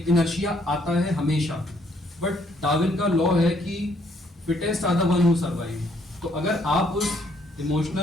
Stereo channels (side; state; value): both; normal; correlation 0.68